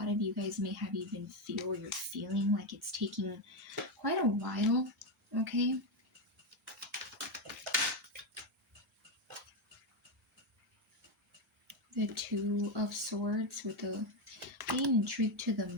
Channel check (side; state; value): both; normal; correlation 0.07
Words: of you guys may have even feel, or you're feeling like it's taking quite a while. Okay, the Two of Swords with the being intrigued to the